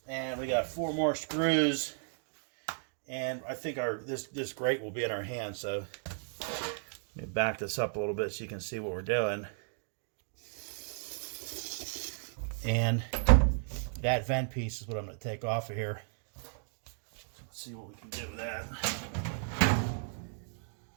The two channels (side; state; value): left; silent; 55 dB below the other